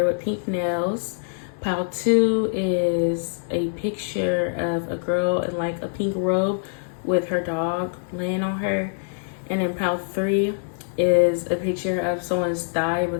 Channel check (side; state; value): right; silent; digital silence